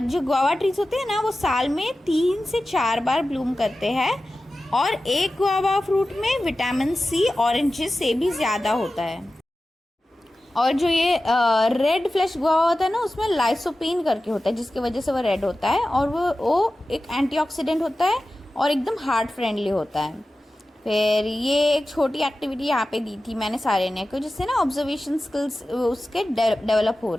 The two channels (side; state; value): both; normal; correlation 0.95